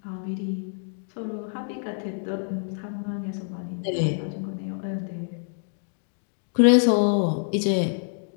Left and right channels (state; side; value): silent; right; digital silence